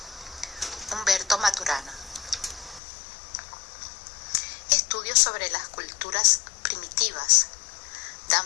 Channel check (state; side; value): drops out; right; at 2.8 s